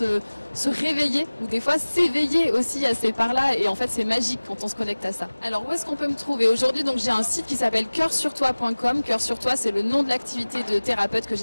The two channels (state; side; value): inverted; both; correlation -1.00